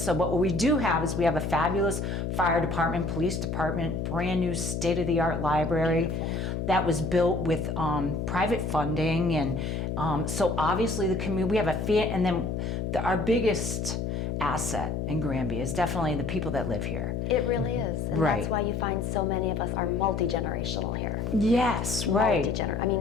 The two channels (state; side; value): noise; left; hum, 2 dB below the sound